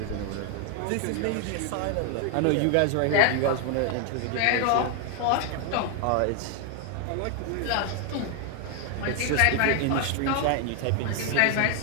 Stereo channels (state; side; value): different; both; correlation 0.00